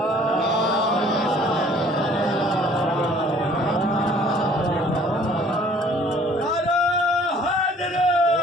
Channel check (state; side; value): normal; both; correlation 0.55